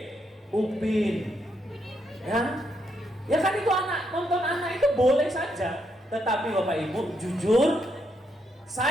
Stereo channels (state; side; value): normal; both; correlation 0.78